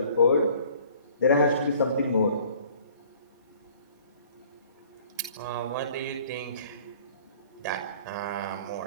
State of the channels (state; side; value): inverted; both; correlation -0.53